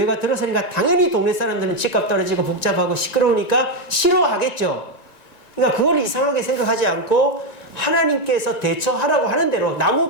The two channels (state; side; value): late; right; 1.9 ms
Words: 들어서니까 당연히 동네 사람들은 집값 떨어지고 복잡하고 시끄러우니까 싫어하겠죠. 그러니까 그걸 이상하게 생각하지 않고 하나님께서 대처하라고 하는 대로 나무